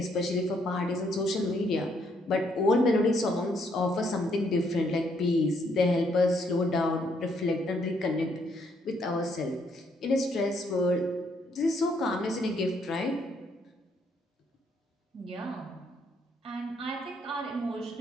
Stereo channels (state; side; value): normal; both; correlation 0.71